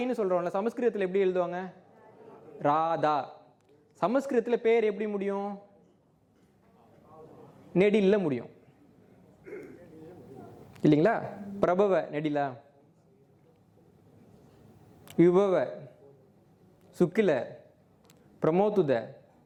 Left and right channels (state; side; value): identical; both; correlation 1.00